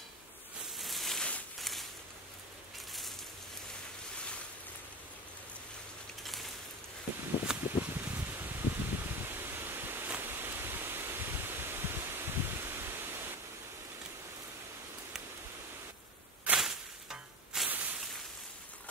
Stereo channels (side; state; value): both; normal; correlation 0.24